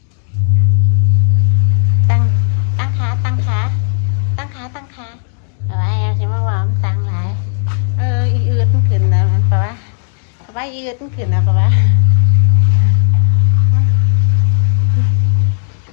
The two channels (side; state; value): right; silent; 56 dB below the other